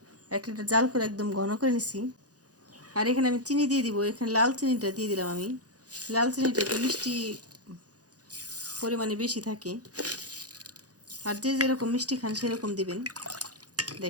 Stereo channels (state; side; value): late; left; 0.67 ms